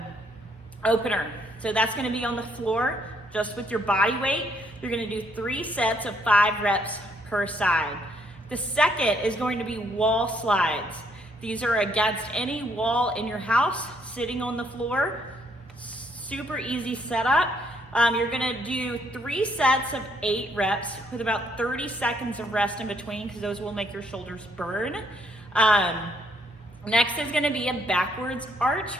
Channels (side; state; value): both; normal; correlation 0.69